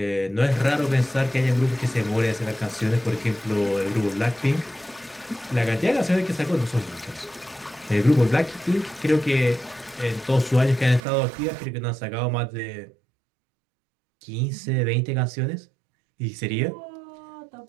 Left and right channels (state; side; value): drops out; left; at 11.0 s